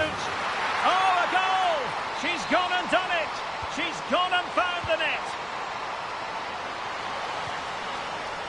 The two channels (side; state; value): both; identical; correlation 1.00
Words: Oh, a goal! She's gone and done it! She's gone and found the net!